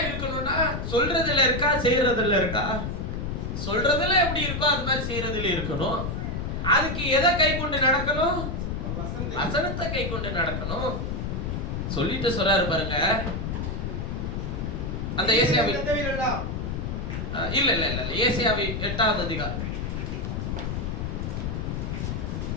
இருக்கணும்னா சொல்றதுல இருக்கா, செய்யறதுல இருக்கா? சொல்றதுல எப்படி இருக்கோ அது மாதிரி செய்யறதுல இருக்கணும். அதுக்கு எதை கை கொண்டு நடக்கணும்? வசனத்தை கை கொண்டு நடக்கணும். சொல்லிட்டு சொல்றாரு பாருங்க, அந்த ஏசாயாவி இல்ல இல்ல இல்ல ஏசாயாவி 8வது அதிகாரம்,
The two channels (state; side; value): noise; left; rumble, 3 dB below the sound